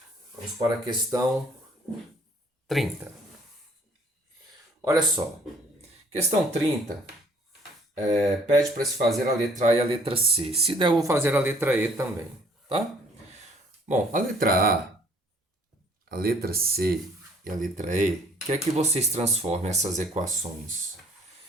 Vamos para a questão 30. Olha só. Questão 30 pede para se fazer a letra A e a letra C. Se der, eu vou fazer a letra E também. Tá? Bom, a letra A, a letra C e a letra E, quer que vocês transformem essas equações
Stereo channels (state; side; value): normal; both; correlation 0.59